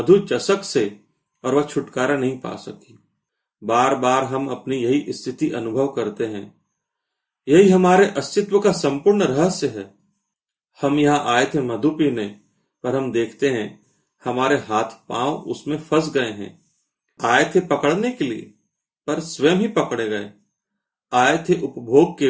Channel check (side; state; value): both; identical; correlation 1.00